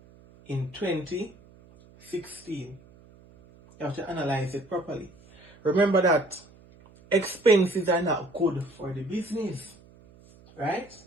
in 2016. You have to analyze it properly. Remember that expenses are not good for the business, right?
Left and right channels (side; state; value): right; noise; hum, 25 dB below the sound